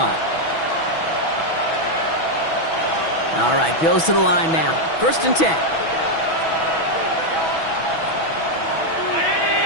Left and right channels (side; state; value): right; late; 6.1 ms